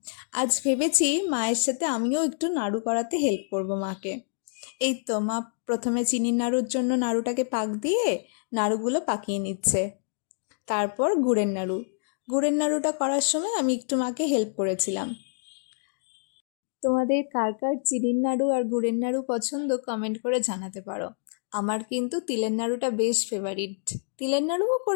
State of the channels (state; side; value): silent; right; digital silence